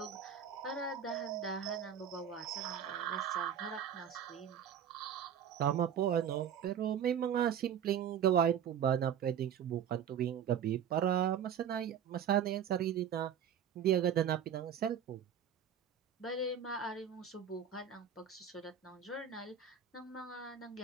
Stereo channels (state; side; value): quieter; left; 8.5 dB